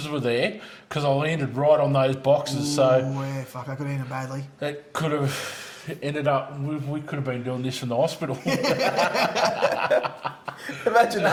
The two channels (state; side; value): identical; both; correlation 1.00